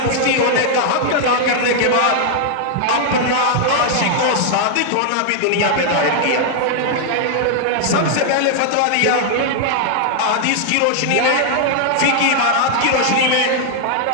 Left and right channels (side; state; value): both; different; correlation -0.01